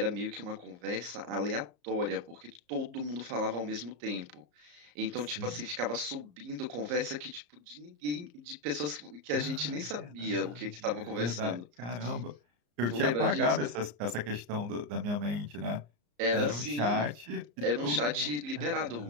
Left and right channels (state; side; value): late; left; 34 ms